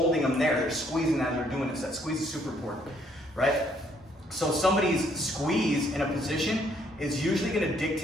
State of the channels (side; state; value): both; normal; correlation 0.68